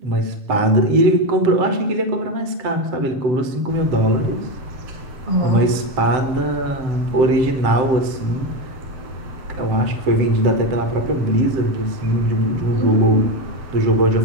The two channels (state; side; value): late; left; 7.7 ms